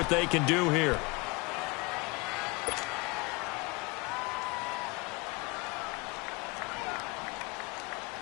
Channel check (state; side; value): quieter; right; 26.3 dB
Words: they can do here.